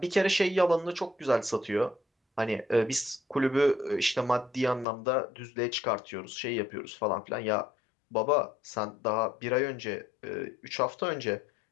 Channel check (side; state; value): right; drops out; at 4.9 s